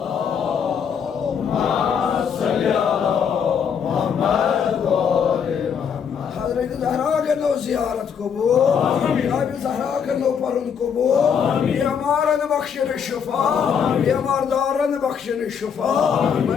زيارة قبور يا بزهراء كنو برن قبور يا مارن بخشن الشفاء يا ماردارن بخشن الشفاء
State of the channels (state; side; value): quieter; right; 7.3 dB